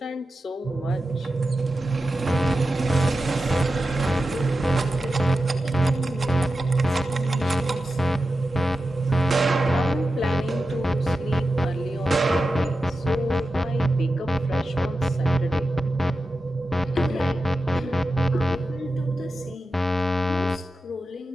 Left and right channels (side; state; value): both; normal; correlation 0.91